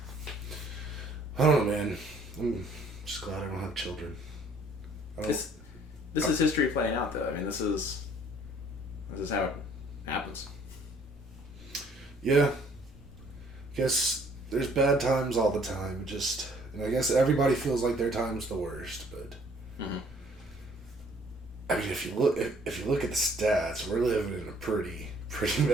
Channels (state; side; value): normal; both; correlation 0.59